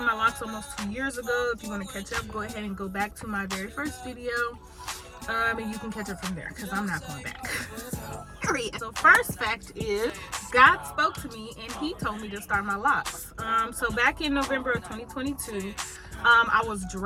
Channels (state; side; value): identical; both; correlation 1.00